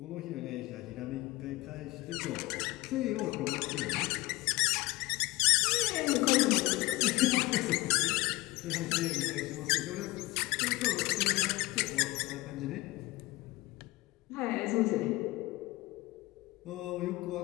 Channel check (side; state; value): right; quieter; 20.5 dB